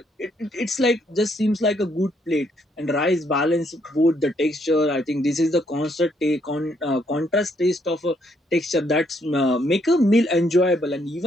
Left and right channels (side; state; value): both; normal; correlation 0.72